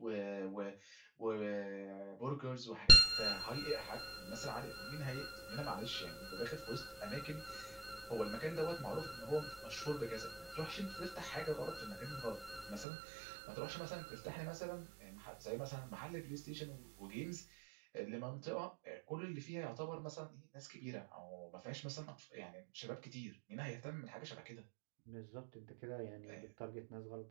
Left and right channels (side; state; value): left; drops out; at 12.9 s